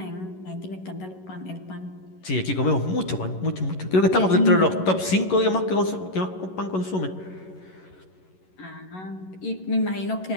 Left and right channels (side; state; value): right; late; 11 ms